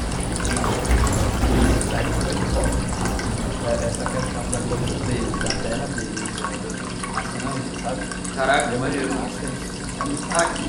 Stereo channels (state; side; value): identical; both; correlation 1.00